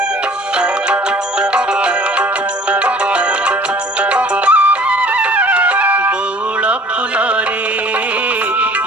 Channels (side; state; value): both; normal; correlation 0.50